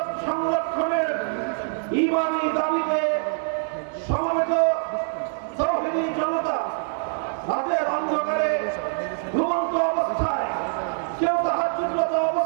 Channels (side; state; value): left; silent; digital silence